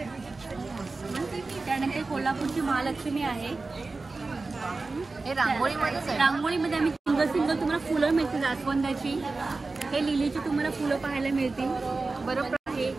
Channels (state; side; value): quieter; left; 3.7 dB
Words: त्यानंतर कोल्हापूरची महालक्ष्मी आहे. हे रांगोळीमध्येच आहे. रांगोळीमध्ये आम्ही सिंगल तुम्हाला फुलं मिळतील. जास्वंदाची, हे लिलीची तुम्हाला फुलं पाहायला मिळतील. बरोबर आहे.